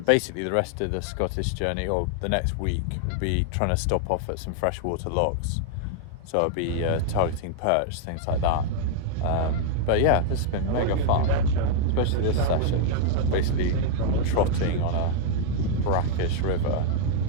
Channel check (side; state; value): both; different; correlation 0.00